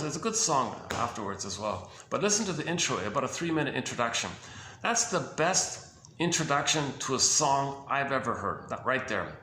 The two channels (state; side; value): identical; both; correlation 1.00